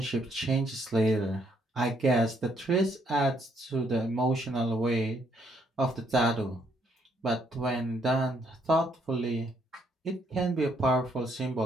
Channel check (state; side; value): normal; both; correlation 0.71